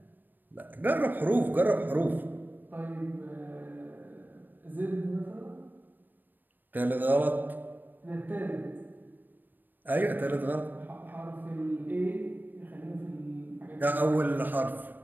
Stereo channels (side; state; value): left; late; 0.091 ms